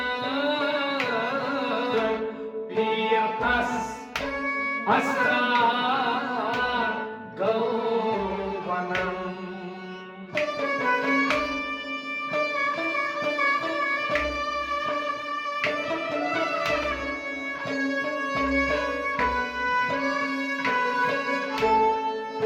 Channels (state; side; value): identical; both; correlation 1.00